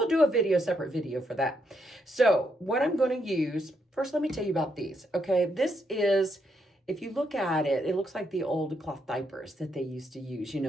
do a separate video for that. So what I'm going to use, first let me tell you about these, okay? This is, if you look at it, it looks like the old cloth diapers that they used to use,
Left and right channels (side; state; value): both; normal; correlation 0.77